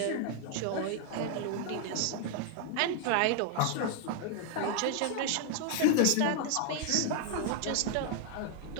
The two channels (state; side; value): different; both; correlation 0.00